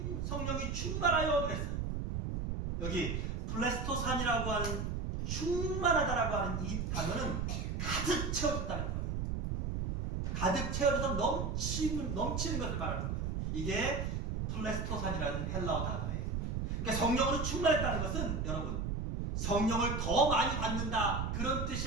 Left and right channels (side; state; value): right; noise; rumble, 1 dB below the sound